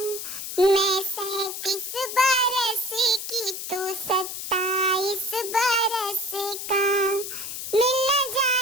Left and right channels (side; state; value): left; noise; hiss, 7 dB below the sound